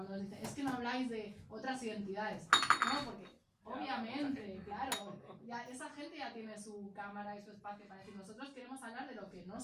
nos dicen, es que no habláis de otras identidades. No, porque obviamente, claro, ya, esa gente ya tiene su cámara y su espacio para decir, nosotros queremos hablar de lo que no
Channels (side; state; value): both; identical; correlation 1.00